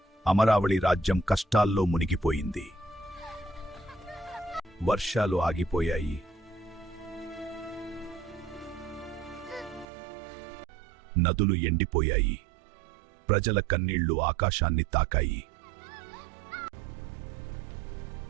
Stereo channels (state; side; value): drops out; left; at 9.9 s